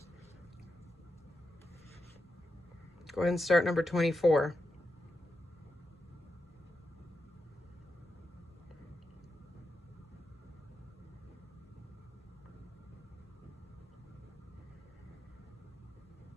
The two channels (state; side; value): normal; both; correlation 0.87